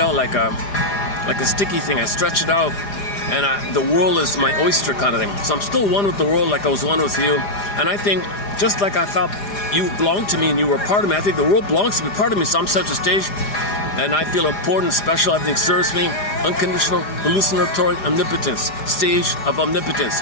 like a sticky thing. I stretch it out. And the world is my oyster kind of thing. So I'm still one with the world like I was one with you. And I think, just like I thought you belonged to me and you were part of me, I think the world belongs to me, part of me. So I'm center stage. And I feel important, special, everything serves me. Unconditional, hallucinatory omnipotence. Stage of omnipotence.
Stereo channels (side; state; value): right; late; 4.9 ms